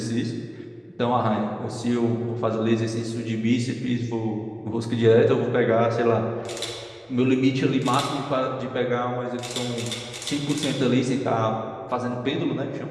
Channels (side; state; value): both; identical; correlation 1.00